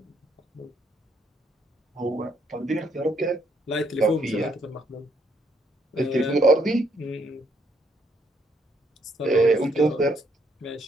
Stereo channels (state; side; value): normal; both; correlation 0.72